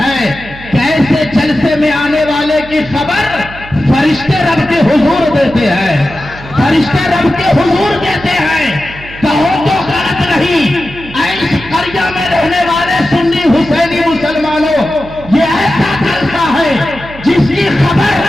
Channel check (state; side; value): noise; right; hum, 16 dB below the sound